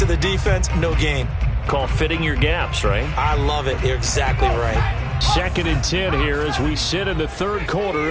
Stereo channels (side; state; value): both; identical; correlation 1.00